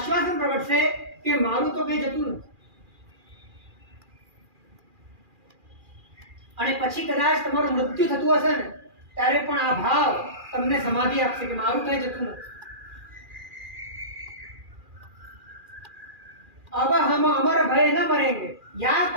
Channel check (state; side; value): late; left; 2.4 ms